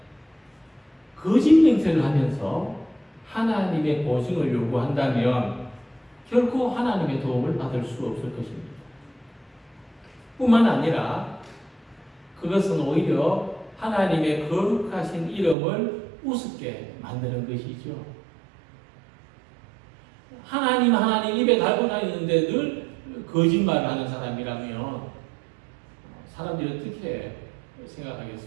거짓 맹세를 하면서 하나님의 보증을 요구한다면 결코 하나님의 도움을 받을 수 없을 것입니다. 뿐만 아니라 그것은 오히려 하나님의 거룩하신 이름을 우습게 만드는 것이죠. 하나님 입에 달고 다니는데 늘 거짓말을 하는 사람이라면 사람들이 어떻게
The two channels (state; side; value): drops out; left; at 15.6 s